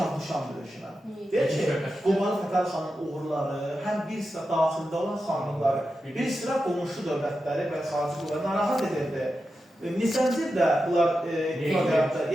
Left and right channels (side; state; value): both; normal; correlation 0.90